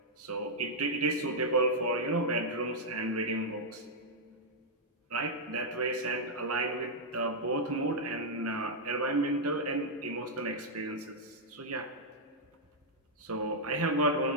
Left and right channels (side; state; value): both; normal; correlation -0.05